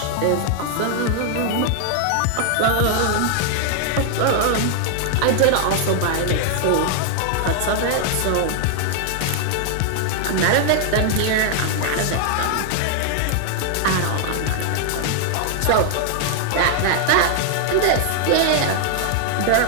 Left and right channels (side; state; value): both; different; correlation 0.00